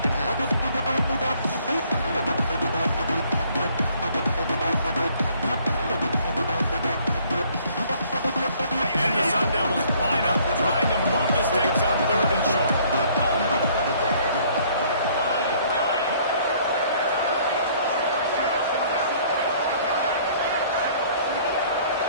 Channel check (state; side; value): inverted; both; correlation -0.60